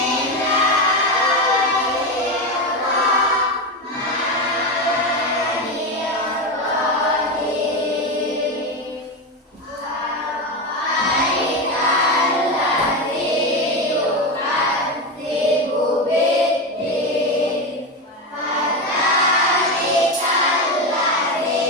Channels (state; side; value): normal; both; correlation 0.16